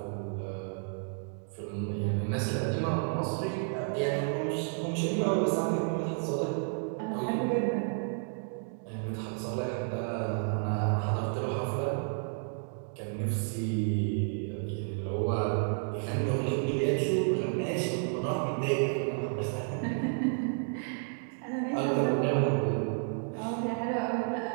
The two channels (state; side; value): silent; left; 57 dB below the other